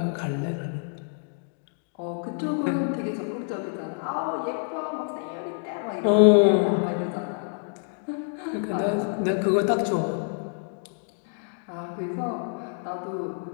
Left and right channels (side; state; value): right; silent; 60 dB below the other